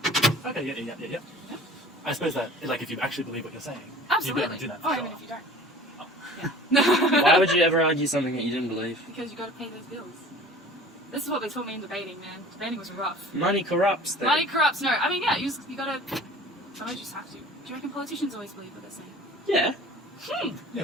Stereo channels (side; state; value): both; normal; correlation 0.45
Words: Okay, yeah. I suppose that, like, if you actually believe what you're saying, Absolutely. you'd be able to do that for Oh, sure. even if you don't. Oh. Yeah. Why would you ever argue something that you didn't believe? Because you got to pay those bills. This is what they taught me in debating, man. Debating was rough. Money corrupts. Then. Money corrupts. No, I mean, yeah, you gotta. Sometimes you just have to. Do you reckon politicians always believe what they're saying? Yeah.